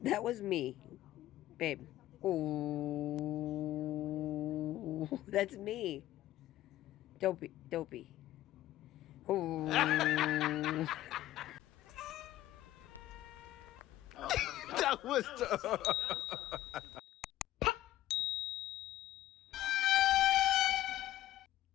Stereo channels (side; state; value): right; quieter; 14.5 dB